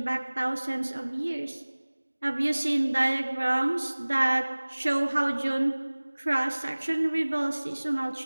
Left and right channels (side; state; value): both; inverted; correlation -1.00